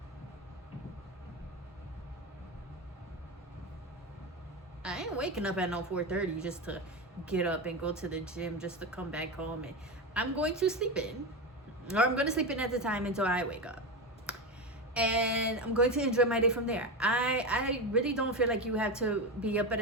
I ain't waking up at no 4:30 just to get up and go to the gym just to come back home, and I'm going to sleep in, or I'm going to sleep in at the time until I wake up, and I'm going to enjoy my day from there. I really don't feel like you have to be up at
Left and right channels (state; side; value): normal; both; correlation 0.17